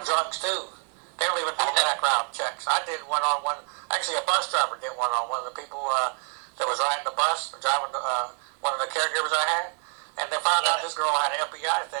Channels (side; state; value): left; quieter; 38.3 dB